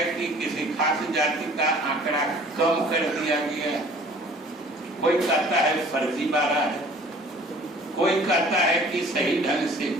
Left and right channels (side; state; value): both; normal; correlation 0.50